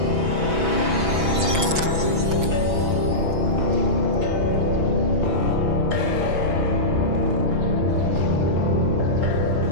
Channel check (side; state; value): left; late; 6.1 ms